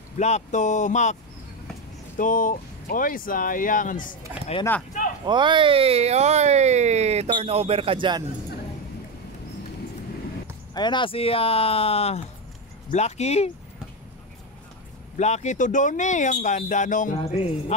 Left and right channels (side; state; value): both; normal; correlation 0.12